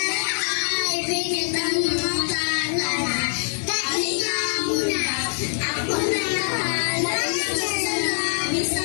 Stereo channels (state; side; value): silent; right; 63 dB below the other